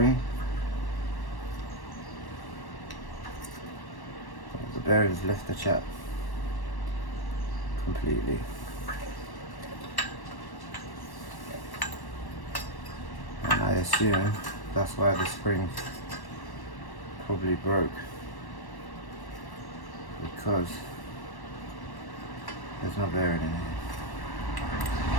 The bearings left the chat completely. And I assume that's why the spring probably broke, because there's no bearing in here.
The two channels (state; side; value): late; right; 1.1 ms